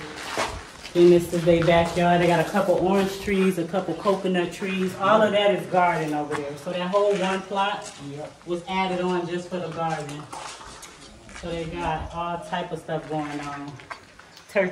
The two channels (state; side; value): identical; both; correlation 1.00